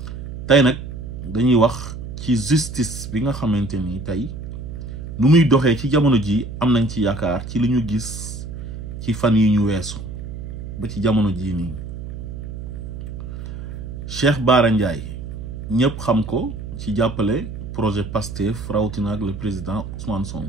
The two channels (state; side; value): noise; right; hum, 9 dB below the sound